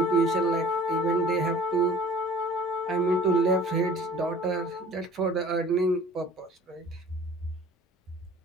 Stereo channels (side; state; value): both; normal; correlation 0.49